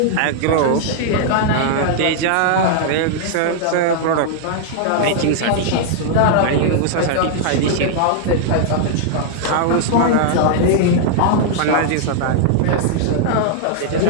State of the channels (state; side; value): different; both; correlation -0.01